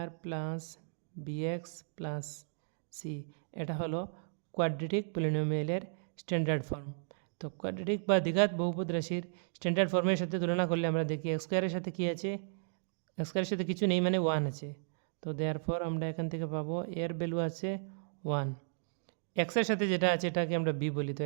plus b x plus c, এটা হলো কোয়াড্রেটিক পলিনোমিয়ালের স্ট্যান্ডার্ড ফর্ম। তো কোয়াড্রেটিক বা দ্বিঘাত বহুপদ রাশির স্ট্যান্ডার্ড ফর্মের সাথে তুলনা করলে আমরা দেখি এক্স স্কোয়ারের সাথে কী আছে, এক্স স্কোয়ারের সাথে কিছু নেই মানে 1 আছে। তো দেয়ারফর আমরা এখান থেকে পাবো এর ভ্যালু আছে 1। এক্সের সাথে যেটা আছে এটাকে আমরা বি বলি, তো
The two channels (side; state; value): left; silent; digital silence